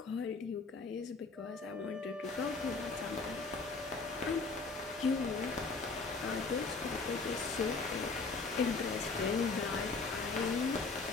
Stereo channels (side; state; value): right; quieter; 4.1 dB